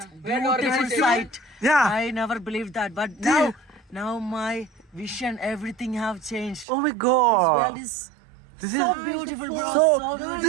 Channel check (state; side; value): drops out; left; at 6.7 s